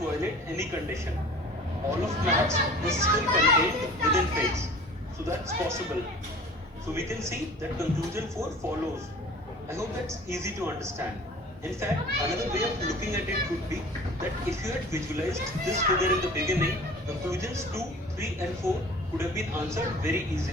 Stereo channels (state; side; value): normal; both; correlation 0.44